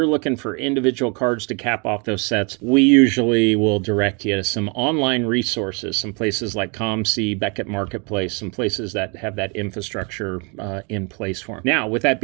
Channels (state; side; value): quieter; left; 33.1 dB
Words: looking for individual cards to cap off those sets, we usually will direct you to some online resources, some places like ComC, Beckett Marketplace, some places that have that infrastructure in place for them. Now, with that